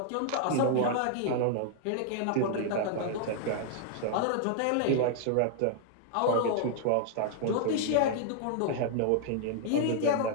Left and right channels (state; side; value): different; both; correlation 0.00